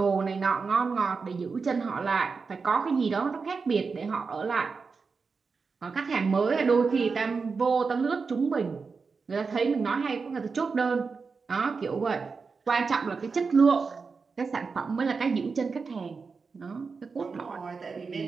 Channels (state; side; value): quieter; left; 4.9 dB